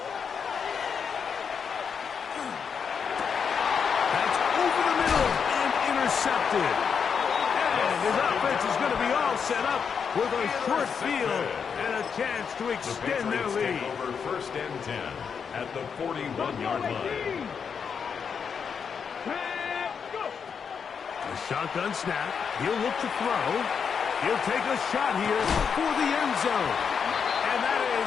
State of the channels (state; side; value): quieter; right; 6.5 dB